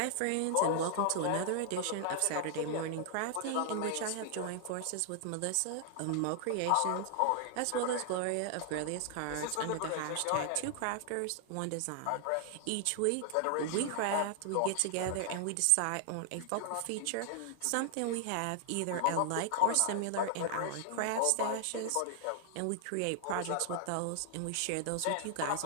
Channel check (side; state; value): both; different; correlation -0.01